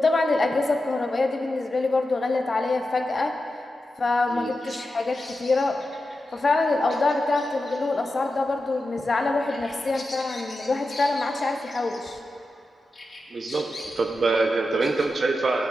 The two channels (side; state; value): both; normal; correlation 0.90